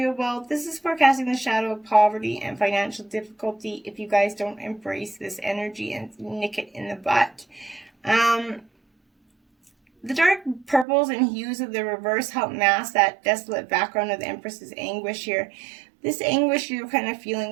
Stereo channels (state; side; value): drops out; left; at 10.9 s